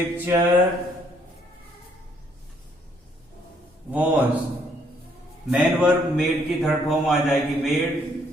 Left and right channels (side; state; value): both; normal; correlation 0.67